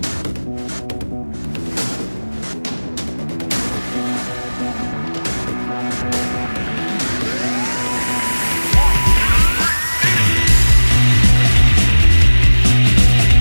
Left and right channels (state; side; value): inverted; both; correlation -1.00